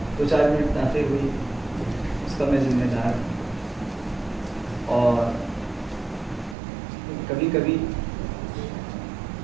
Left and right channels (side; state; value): left; drops out; at 6.6 s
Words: چار منٹ تاخیر ہوئی اس کا میں ذمہ دار. اور کبھی کبھی